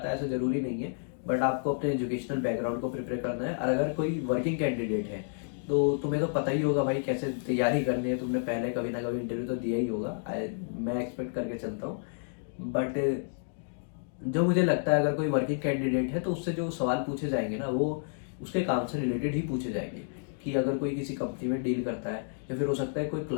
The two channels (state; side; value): silent; right; digital silence